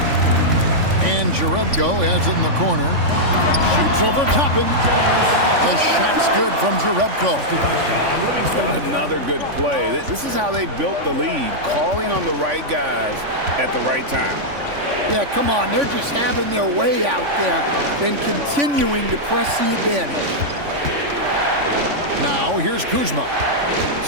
And Jerebko has it in the corner. Shoots over Toppin. The shot's good from Jerebko. Another good play. This is how they built the lead, calling on the right guys at the right time. Yeah, come on. They're just having their way out there and continuing to press the advantage. Now here's Kuzma.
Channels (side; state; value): left; late; 3.5 ms